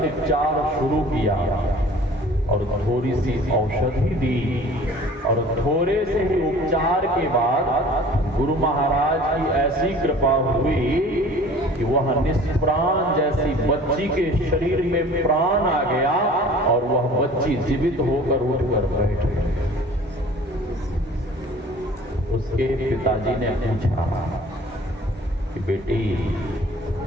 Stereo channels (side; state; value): both; normal; correlation 0.47